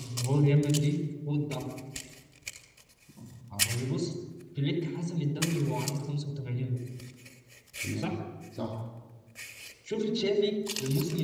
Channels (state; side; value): identical; both; correlation 1.00